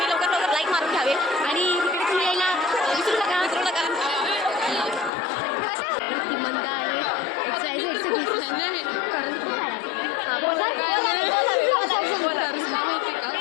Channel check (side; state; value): right; drops out; at 5.1 s